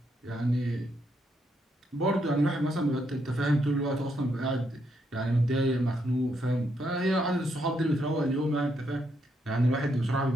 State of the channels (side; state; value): both; normal; correlation 0.77